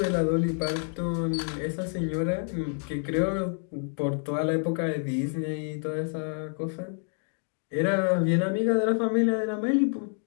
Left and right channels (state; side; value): silent; right; 55 dB below the other